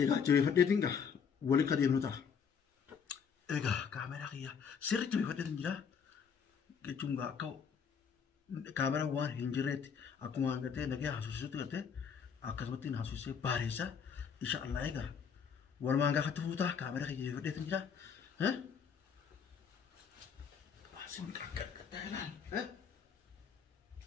جوي فديتينغا ولي كديمنوتا ايغا كاميرا خيا سيري جوي فديتينجا كچونغا كاو كاميرا وان هنجريت اكو غته نغي حسوسوت غته اكسبتين حسوسي باريسا ان شاء الله ايغا ولمانغا خطفوتا كاميرا خيا جوي فديتينجا ها واسم كاكتايلان ها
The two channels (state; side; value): quieter; right; 6.7 dB